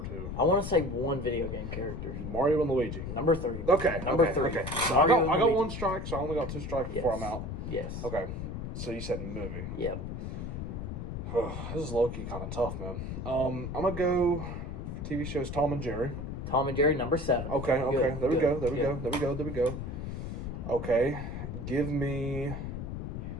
2. I want to say one video game character. Mario and Luigi. Number 3. Okay. Number okay, 3. Okay. So I Mario got and Luigi. 1 strike, so I only got 2 strikes before Yes. I'm out. Yes. Okay. So you said movie. Yep. This is low-key kind of tough, man. I'm going to go TV shows Tom and Jerry. Tom and Jerry, number 7. Okay. Good, There we good, go. good. There we go. Okay. Give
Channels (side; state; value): left; noise; rumble, 5 dB below the sound